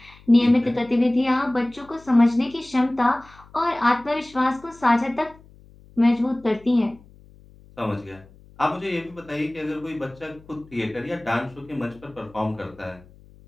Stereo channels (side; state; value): left; noise; hum, 25 dB below the sound